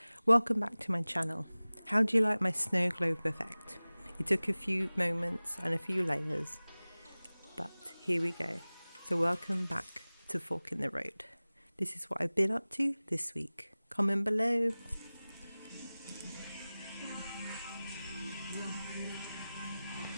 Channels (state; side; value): inverted; both; correlation -0.98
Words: Welcome back to my channel. How do you like my snow globe effect? It took a few moments and a few layers, but here we go. So welcome back to Fork in the Road. This is what I've been up to this week. Comment below.